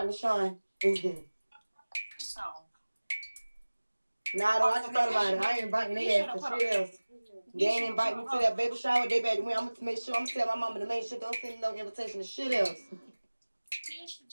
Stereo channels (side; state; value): both; inverted; correlation -1.00